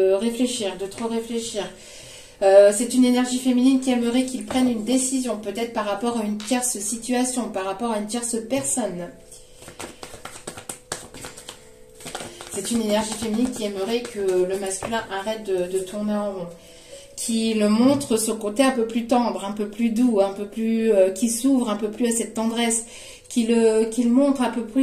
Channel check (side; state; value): both; identical; correlation 1.00